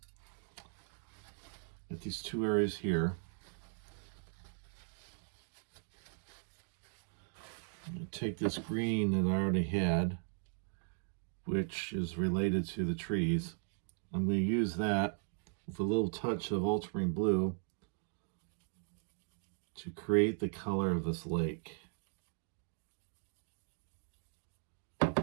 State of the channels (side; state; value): left; silent; 52 dB below the other